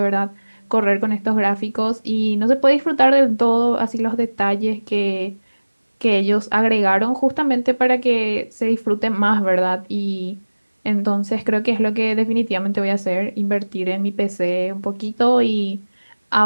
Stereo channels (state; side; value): inverted; both; correlation -1.00